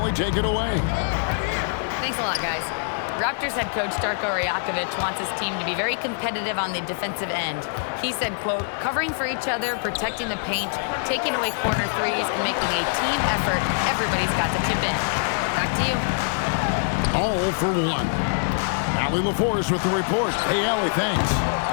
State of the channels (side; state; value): right; silent; digital silence